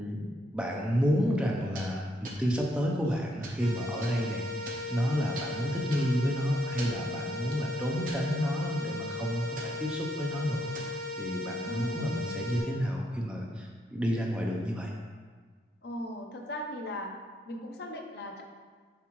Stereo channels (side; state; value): both; normal; correlation 0.75